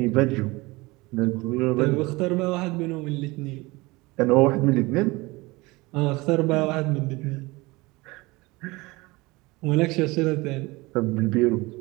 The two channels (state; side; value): quieter; left; 22.8 dB